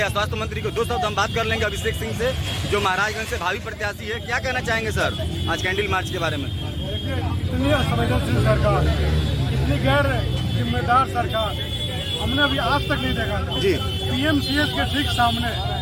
स्वास्थ्य मंत्री को। दो शब्द हम बात कर लेंगे अभिषेक सिंह से, जो महाराजगंज से भावी प्रत्याशी है। क्या कहना चाहेंगे सर आज कैंडल मार्च के बारे में? इतनी असंवेदनशील सरकार, इतनी गैर जिम्मेदार सरकार हमने अभी आज तक नहीं देखा था। जी। PMCH के ठीक सामने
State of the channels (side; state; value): both; identical; correlation 1.00